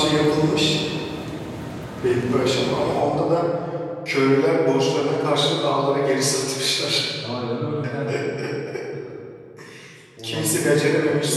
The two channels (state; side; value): identical; both; correlation 1.00